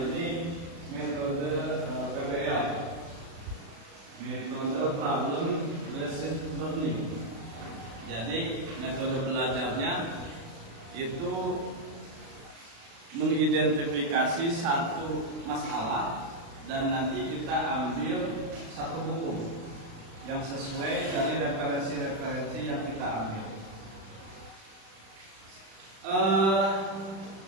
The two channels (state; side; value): late; left; 36 ms